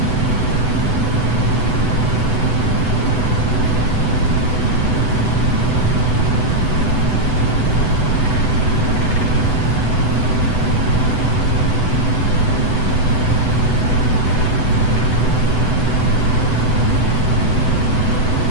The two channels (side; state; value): right; late; 8.0 ms